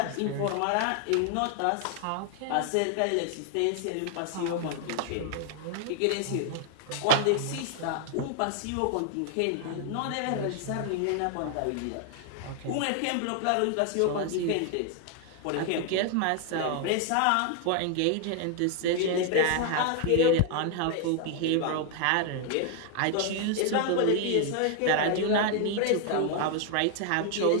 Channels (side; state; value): both; different; correlation 0.00